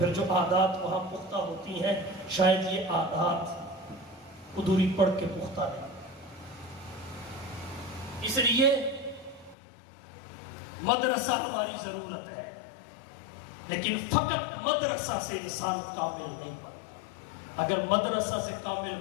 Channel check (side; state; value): right; drops out; at 9.6 s